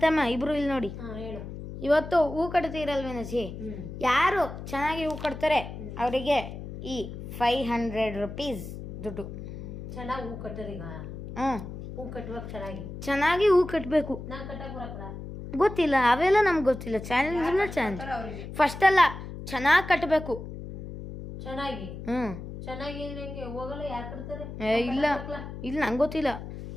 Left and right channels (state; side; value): noise; left; hum, 10 dB below the sound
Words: ಇಬ್ರು ಇಲ್ಲಿ ನೋಡಿ. ಹೇಳು. ಇವತ್ತು ಹೂ ಕಟ್ತೀರಲ್ವೇನಜ್ಜಿ, ಯಾರು ಚೆನ್ನಾಗಿ ಹೂ ಕಟ್ತಾರೆ ಅವರಿಗೆ ಈ 500 ರೂಪೀಸ್ ದುಡ್ಡು. ಚೆನ್ನಾಗಿ ಹೂ ಕಟ್ಟರೀಗ. ಹೂ ಕಟ್ಟುವಾಗ ಚೆನ್ನಾಗಿ ಹೂ ಕಟ್ಟಬೇಕು. ನಾನು ಕಟ್ಟಕ್ ಬರಕಲ್ಲ, ಗೊತ್ತಿಲ್ಲ, ಅವೆಲ್ಲ ನಮ್ಗೆ ಗೊತ್ತಿಲ್ಲ. ಚಾಲೆಂಜ್ ಫಸ್ಟ್ ಅಲ್ಲ, ಚೆನ್ನಾಗಿ ಕಟ್ಟಬೇಕು. ಚೆನ್ನಾಗಿ ಚೆನ್ನಾಗಿ ನಂಗೆ ಹೋಗಲ್ಲ. ಯಾರು ಕಟ್ತಾರೆ? ಇಲ್ಲ ಇಲ್ಲ, ನಂಗೆ ಗೊತ್ತಿಲ್ಲ.